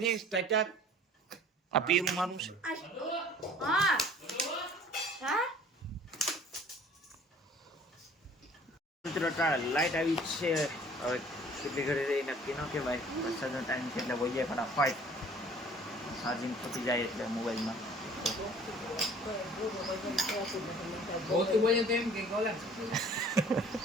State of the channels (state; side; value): normal; both; correlation 0.51